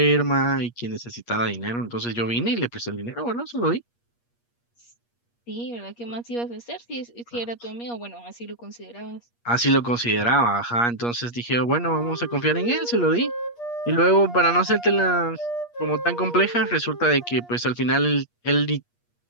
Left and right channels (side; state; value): right; late; 8.4 ms